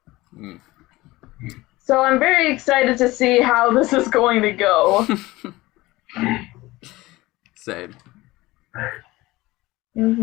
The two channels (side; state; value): right; quieter; 19.4 dB